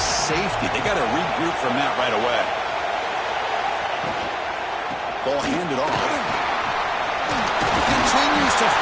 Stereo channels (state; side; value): identical; both; correlation 1.00